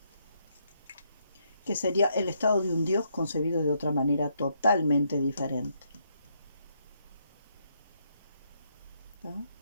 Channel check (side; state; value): both; inverted; correlation -0.76